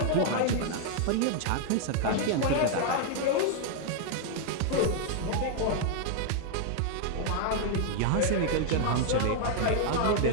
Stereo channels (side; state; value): both; different; correlation 0.00